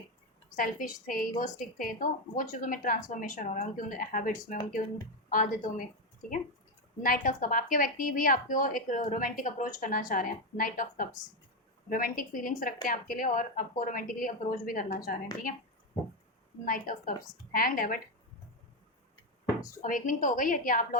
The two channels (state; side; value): normal; both; correlation 0.09